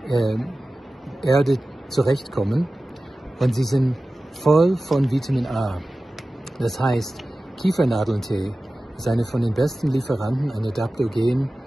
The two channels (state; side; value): normal; both; correlation 0.96